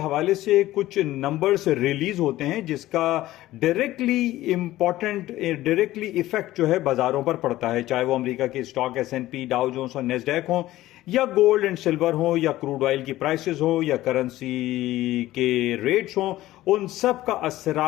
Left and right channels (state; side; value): quieter; right; 15.8 dB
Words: से कुछ नंबर्स रिलीज होते हैं जिसका डायरेक्टली इफेक्ट जो है बाजारों पर पड़ता है, चाहे वो अमेरिका के स्टॉक S&P, डाउ जोन्स और नेस्डैक हो, या गोल्ड एंड सिल्वर हो, या क्रूड ऑयल की प्राइसेस हो, या करेंसी के रेट्स हो। उन सब का